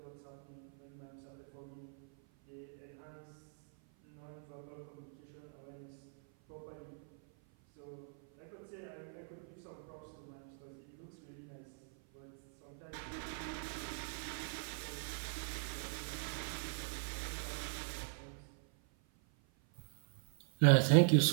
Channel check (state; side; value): silent; left; 50 dB below the other